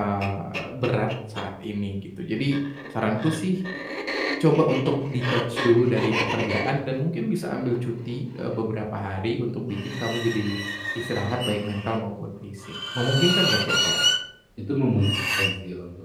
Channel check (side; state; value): both; identical; correlation 1.00